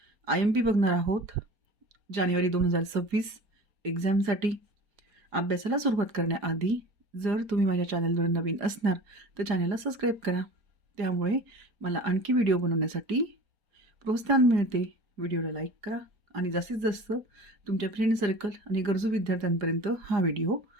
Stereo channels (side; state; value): left; late; 4.8 ms